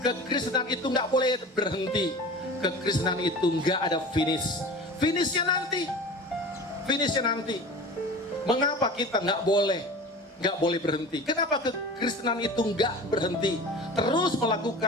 kekristenan itu gak boleh berhenti, kekristenan itu gak ada finish. Finishnya nanti. Mengapa kita gak boleh berhenti? Kenapa kekristenan itu nggak berhenti? Terus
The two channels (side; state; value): both; normal; correlation 0.36